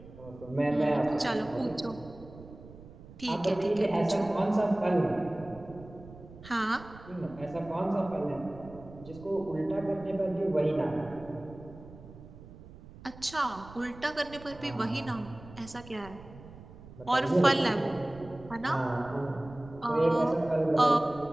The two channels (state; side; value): noise; right; rumble, 18 dB below the sound